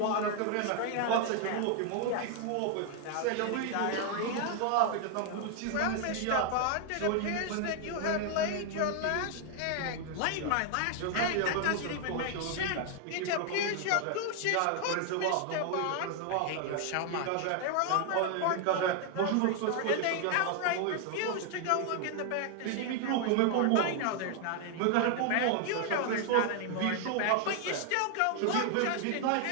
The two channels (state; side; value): different; both; correlation 0.00